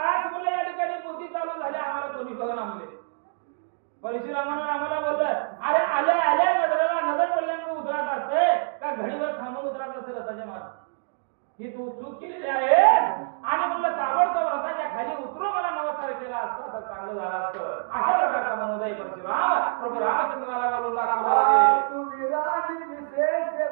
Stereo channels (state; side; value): silent; left; digital silence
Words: म्हणलं या ठिकाणी पोथी चालू झाली आम्हाला कोणी बघा म्हणले. परशुरामानं रामाला बोललं अरे आले आले नजरेला नजर पडल्यामुळे उतरत असते का घडीवर थांबून उतरत असते रथाच्या मागे. ही तू चूक केलेली आहेस आणि म्हणलं ताबडतोब रथाच्या खाली उतरून मला नमस्कार केला असता तर चांगलं झालं असतं. अशा प्रकारचा मनोदय परशुराम प्रभू रामचंद्राला बोलू लागले. तुझी राणी